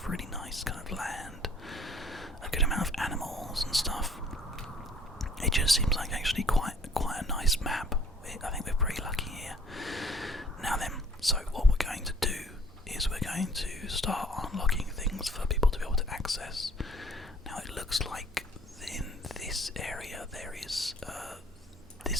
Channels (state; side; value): normal; both; correlation 0.56